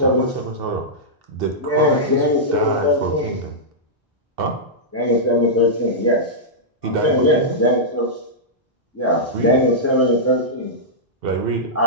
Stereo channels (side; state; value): both; normal; correlation -0.11